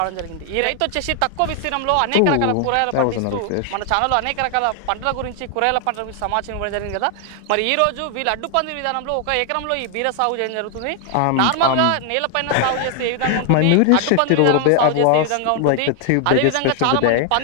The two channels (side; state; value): both; different; correlation 0.00